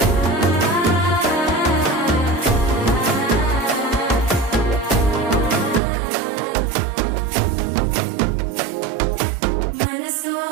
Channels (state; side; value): drops out; left; at 5.8 s